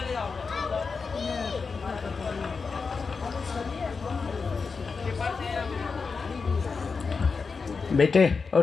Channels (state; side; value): quieter; right; 4.9 dB